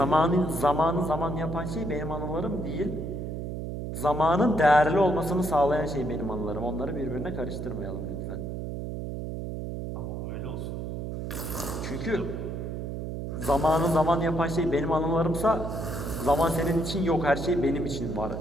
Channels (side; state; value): right; noise; hum, 5 dB below the sound